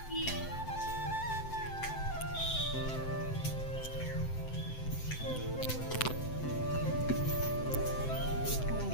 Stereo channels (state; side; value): late; right; 7.8 ms